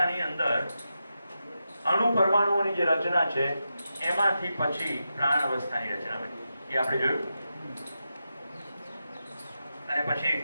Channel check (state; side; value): inverted; both; correlation -0.89